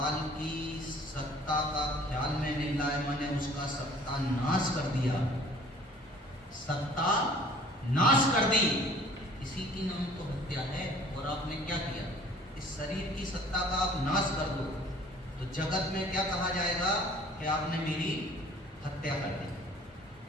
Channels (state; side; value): normal; both; correlation 0.52